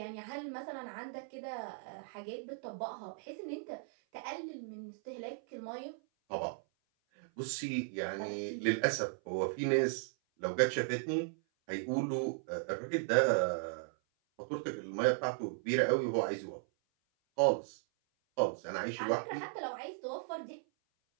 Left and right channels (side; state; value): left; silent; 53 dB below the other